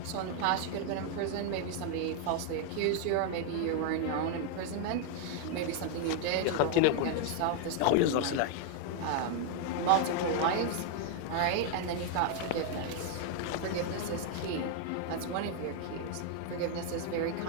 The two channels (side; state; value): both; different; correlation 0.00